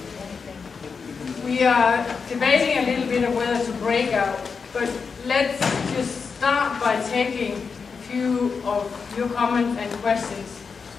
We are debating a little bit of whether to break out, but let's just start by taking a few of your comments and questions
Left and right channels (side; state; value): right; quieter; 5.4 dB